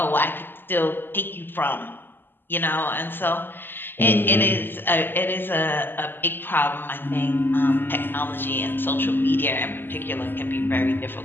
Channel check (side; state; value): right; late; 0.096 ms